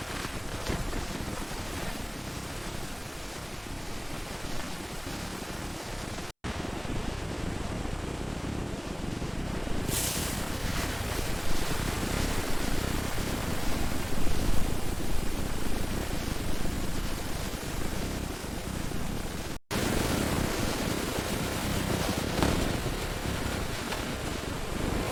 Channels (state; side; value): identical; both; correlation 1.00